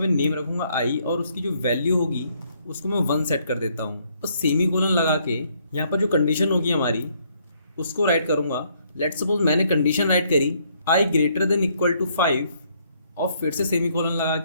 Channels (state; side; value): inverted; both; correlation -0.69